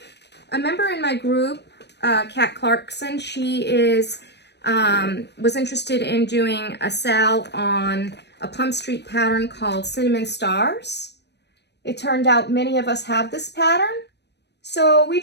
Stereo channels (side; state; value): right; late; 0.50 ms